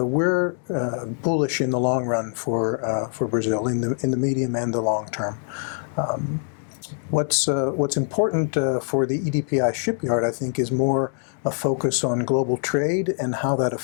we're bullish in the long run for Brazil, in the medium and the long term. What's important for the EDPI shipyard, I think, is more a focus on global trade and how that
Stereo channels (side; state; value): right; silent; digital silence